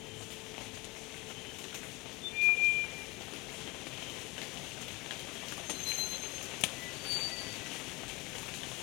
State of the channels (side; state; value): right; quieter; 24.3 dB